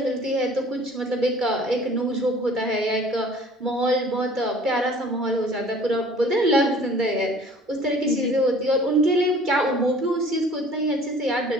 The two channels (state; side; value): normal; both; correlation 0.50